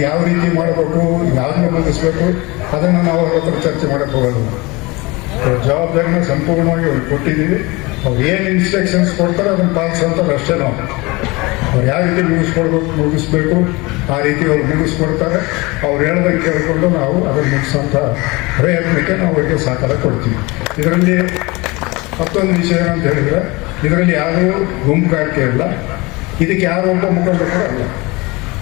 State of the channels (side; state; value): right; quieter; 24.1 dB